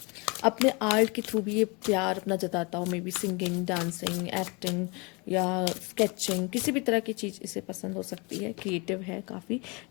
अपने आर्ट के थ्रू भी ये प्यार अपना जताता हो, may be singing, dancing, acting या स्केचिंग, किसी भी तरह की चीज़ इसे पसंद हो सकती है। क्रिएटिव है काफ़ी।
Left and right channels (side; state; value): right; quieter; 29.2 dB